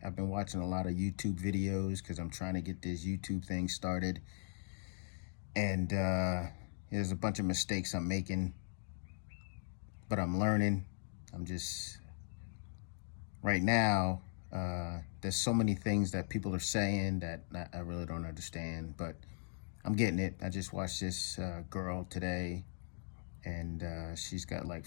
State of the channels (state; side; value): silent; right; digital silence